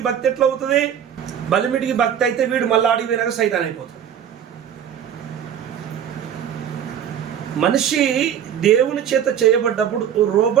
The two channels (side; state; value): left; quieter; 9.0 dB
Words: భక్తి ఎట్లా అవుతుంది? బలిమిటికి భక్తి అయితే వీడు మళ్ళీ ఆడికి వెనక సైతాన్ అయిపోతాడు. మనిషి దేవుని చేత చేయబడ్డప్పుడు